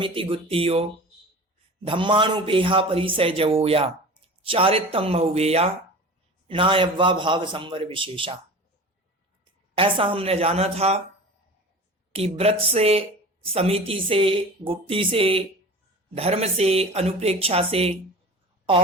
गुत्तियो धम्मानुपेहा परिसय जवोया चारितम बहुवेया नायव्वा भाव संवर विशेषा। ऐसा हमने जाना था कि व्रत से, समिति से, गुप्ति से, धर्म से, अनुप्रेक्षा से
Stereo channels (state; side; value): normal; both; correlation 0.36